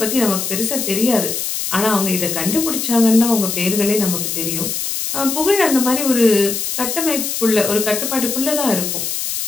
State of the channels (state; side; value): noise; left; hiss, 3 dB below the sound